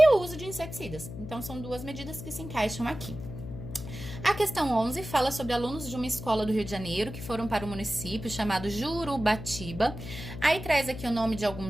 o uso de inseticidas. Então, são duas medidas que se encaixam aqui. A questão 11 fala sobre alunos de uma escola do Rio de Janeiro que foram para o município chamado Jurubatiba. Aí traz aqui o nome de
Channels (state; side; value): noise; left; hum, 10 dB below the sound